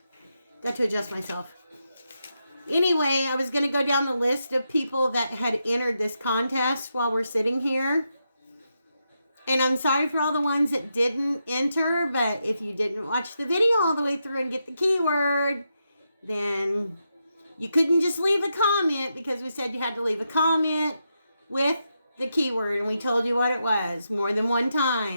to adjust myself. Anyway, I was going to go down the list of people that had entered this contest while we're sitting here. And I'm sorry for all the ones that didn't enter, but if you didn't watch the video all the way through and get the keyword, then you couldn't just leave a comment, because we said you had to leave a comment with the keyword, and we told you what it was more than one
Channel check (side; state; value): both; inverted; correlation -0.85